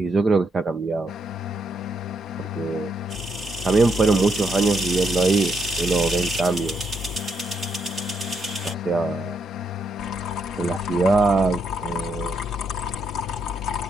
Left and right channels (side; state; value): both; normal; correlation 0.77